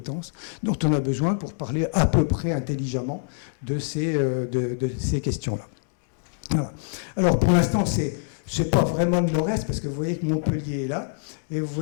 dont on a besoin pour parler à peu près intelligemment de ces questions-là. Voilà. Alors, pour l'instant, c'est pas vraiment le nord-est, parce que vous voyez que Montpellier est là, et vous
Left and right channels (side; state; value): right; silent; digital silence